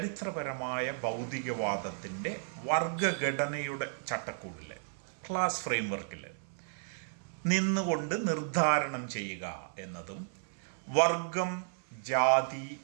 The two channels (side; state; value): left; silent; 55 dB below the other